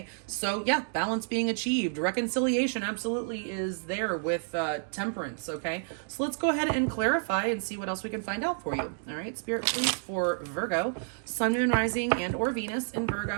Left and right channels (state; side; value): silent; left; digital silence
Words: so yeah, balance being achieved. Reconciliation absolutely is there with temperance. Okay, so let's go ahead and clarify and see what else we can find out for you. All right, Spirit, please, for Virgo, Sun, Moon, Rising, and or Venus in